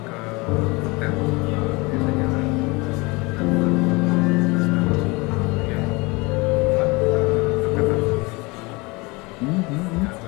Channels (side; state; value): right; quieter; 25.5 dB